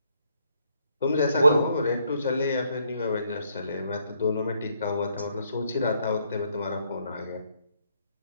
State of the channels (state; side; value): inverted; both; correlation -0.71